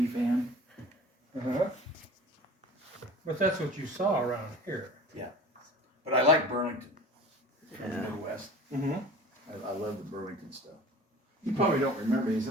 fan. Uh-huh. But that's what you saw around here. Yeah. But I like Burlington from the Yeah. Midwest. Mm-hmm. I love the Burlington stuff. You probably don't remember these,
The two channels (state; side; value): normal; both; correlation 0.41